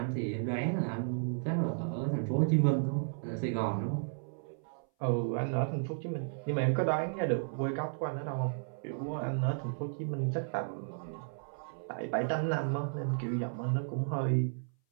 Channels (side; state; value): left; silent; 55 dB below the other